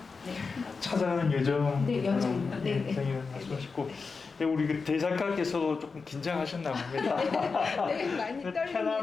네. 찾아가는 여정. 네, 여정. 네, 여정이라는 말씀하시고, 우리 대작가께서도 조금 긴장하셨나 봅니다. 네, 많이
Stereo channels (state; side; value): quieter; right; 4.7 dB